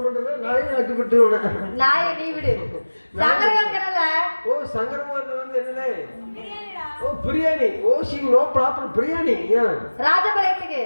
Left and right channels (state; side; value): inverted; both; correlation -1.00